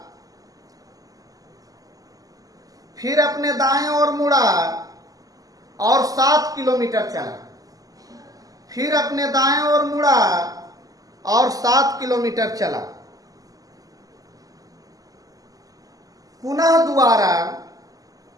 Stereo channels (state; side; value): late; left; 0.17 ms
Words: फिर अपने दाएं ओर मुड़ा और 7 किलोमीटर चला, फिर अपने दाएं ओर मुड़ा और 7 किलोमीटर चला। पुनः